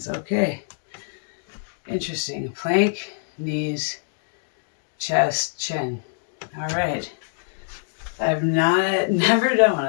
Okay. Interesting. Plank, knees, chest, chin. All right. I've never done one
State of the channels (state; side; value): silent; right; digital silence